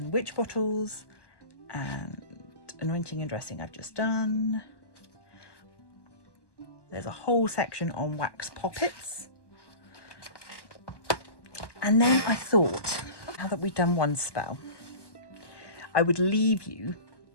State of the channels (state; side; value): late; right; 1.1 ms